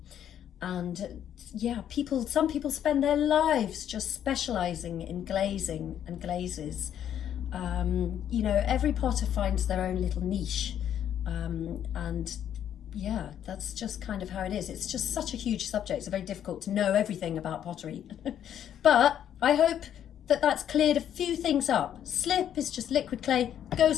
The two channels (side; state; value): right; quieter; 10.0 dB